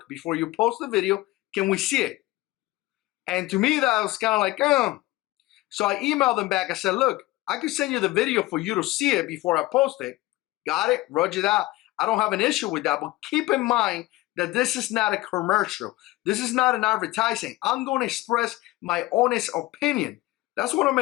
before you post the video, can we see it? And to me, that was kind of like, So I emailed them back. I said, look, I can send you the video for you to see it before I post it. Got it? Roger that. I don't have an issue with that, but keep in mind that this is not a commercial. This is not an advertising. I'm going to express my honest opinion. That's what I'm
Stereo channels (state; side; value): quieter; right; 19.0 dB